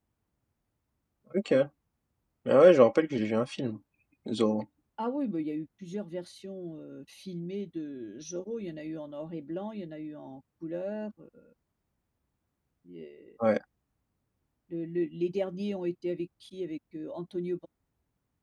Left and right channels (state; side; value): identical; both; correlation 1.00